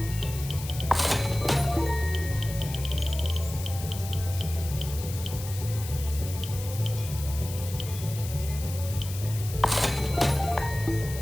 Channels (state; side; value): noise; left; hiss, 11 dB below the sound